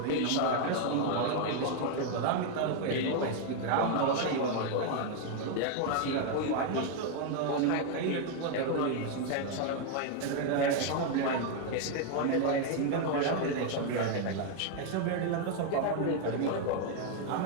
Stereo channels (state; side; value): different; both; correlation 0.00